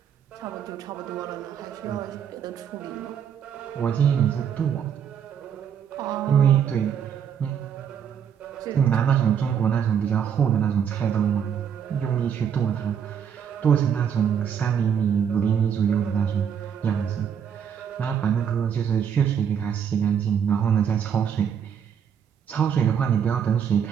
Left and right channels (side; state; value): left; quieter; 8.0 dB